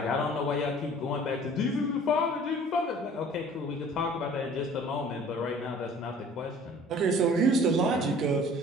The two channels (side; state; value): both; normal; correlation 0.49